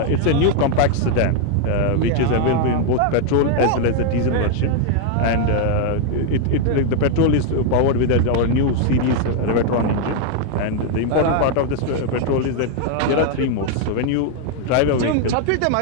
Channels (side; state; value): both; different; correlation 0.00